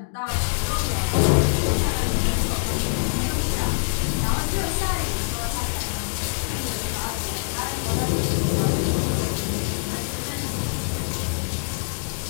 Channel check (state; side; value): silent; right; digital silence